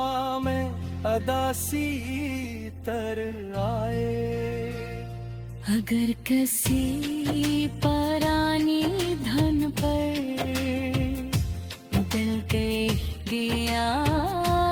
में अदासी तर आए, अगर किसी परानी धन पर दिल के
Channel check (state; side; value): identical; both; correlation 1.00